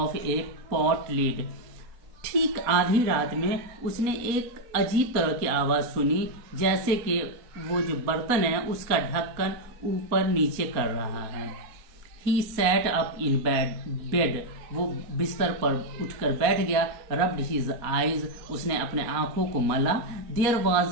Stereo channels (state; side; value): late; left; 4.2 ms